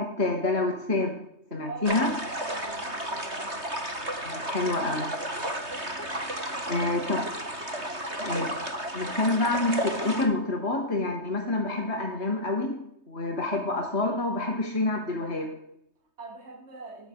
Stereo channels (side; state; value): left; late; 3.2 ms